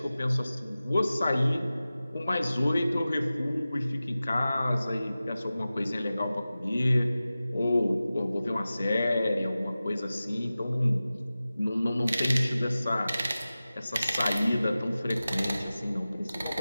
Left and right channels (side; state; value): both; inverted; correlation -0.96